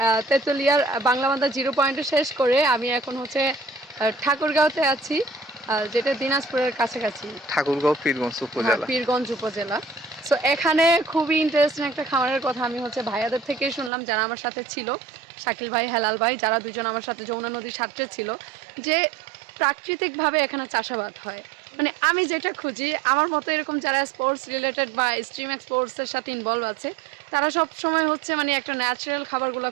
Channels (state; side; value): drops out; left; at 13.9 s